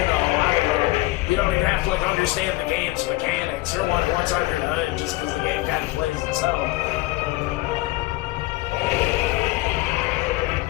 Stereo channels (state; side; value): quieter; right; 19.7 dB